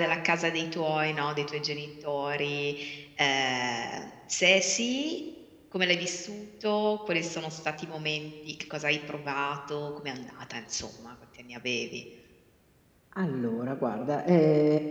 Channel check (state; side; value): identical; both; correlation 1.00